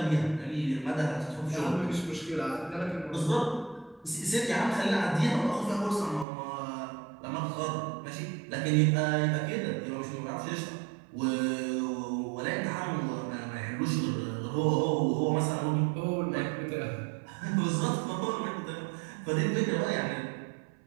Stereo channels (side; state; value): left; drops out; at 6.2 s